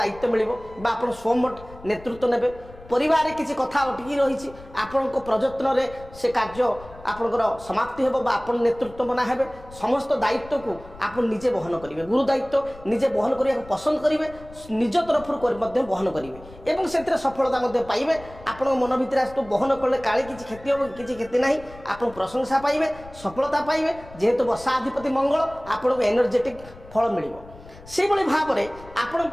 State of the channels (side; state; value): left; noise; rumble, 19 dB below the sound